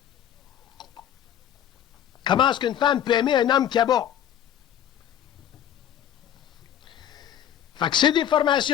Comment est-ce qu'une femme peut aimer un homme qui abat? Fait que ces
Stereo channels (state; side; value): quieter; right; 10.2 dB